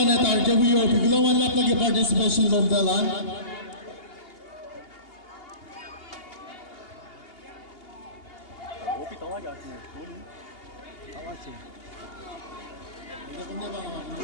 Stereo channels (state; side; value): late; right; 2.8 ms